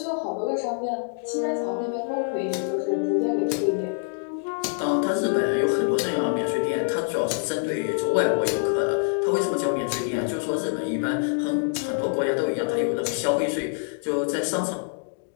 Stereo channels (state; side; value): silent; right; digital silence